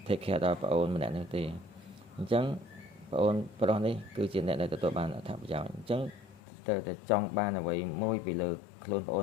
take care ដល់ប្អូនម្នាក់នេះទេអញ្ចឹងប្អូនប្រុសនេះគឺជាអ្នកដែលទទួលបានអត្ថប្រយោជន៍អញ្ចឹងទៅតែចង់បានអ្វីមួយពីលើខ្លួនប្អូ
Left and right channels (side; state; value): right; drops out; at 6.4 s